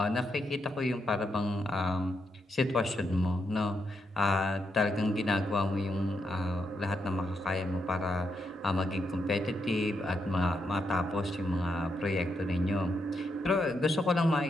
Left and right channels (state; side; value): normal; both; correlation 0.81